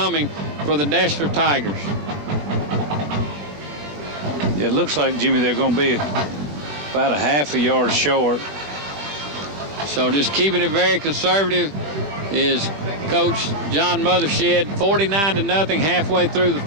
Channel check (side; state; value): left; late; 20 ms